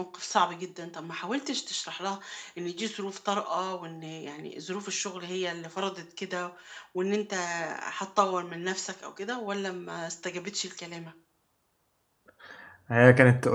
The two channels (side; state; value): both; identical; correlation 1.00